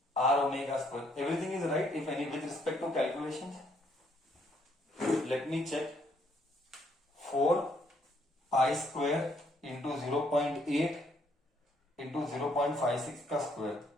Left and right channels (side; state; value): both; normal; correlation 0.69